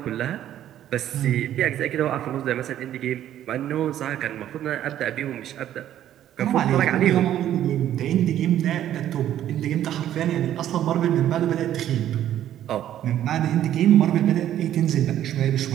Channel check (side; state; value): left; quieter; 11.6 dB